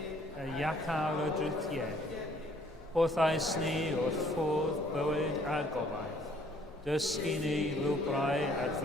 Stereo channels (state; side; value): normal; both; correlation 0.61